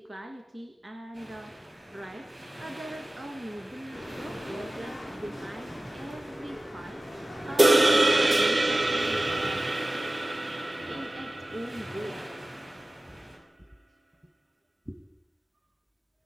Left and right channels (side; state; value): both; normal; correlation 0.96